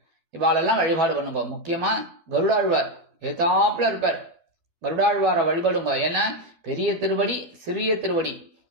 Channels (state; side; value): late; left; 12 ms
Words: இவாளெல்லாம் வழிபாடு பண்ணுங்க. முக்கியமா கருடாழ்வார் ஏதாப்புல இருப்பார். கருடாழ்வாரை வழிபடுங்க. ஏன்னா பெரிய திருவடி, சிறிய திருவடி